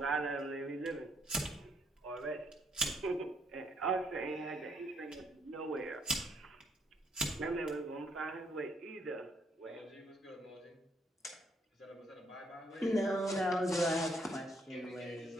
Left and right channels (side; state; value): both; normal; correlation 0.72